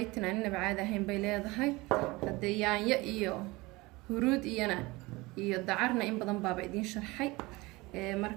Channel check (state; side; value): quieter; left; 22.3 dB